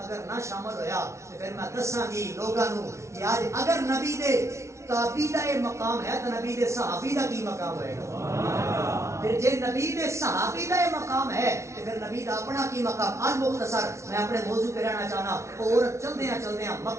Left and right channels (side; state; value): left; late; 0.13 ms